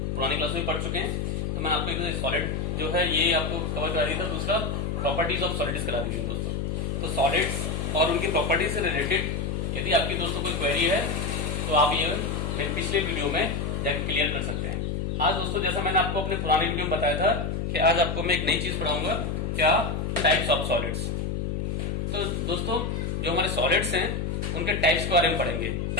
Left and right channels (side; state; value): left; noise; hum, 1 dB below the sound